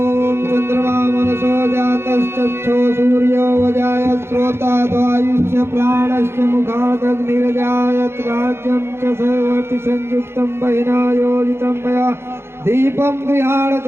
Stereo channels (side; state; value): left; late; 0.12 ms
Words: चक्षो सूर्यो वजायत श्रोता द्वायुष्य प्राणस्य मुखादग्निरजायत राज्यं च सर्वति संयुक्तं बहिना योजितं मया दीपं गृहाण